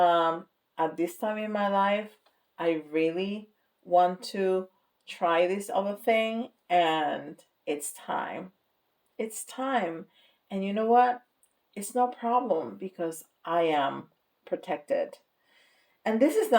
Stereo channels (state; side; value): identical; both; correlation 1.00